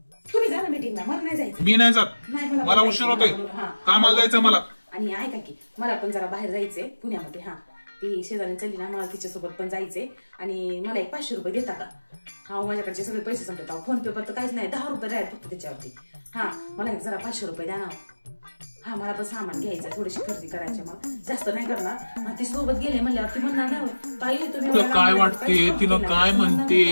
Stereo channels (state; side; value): inverted; both; correlation -1.00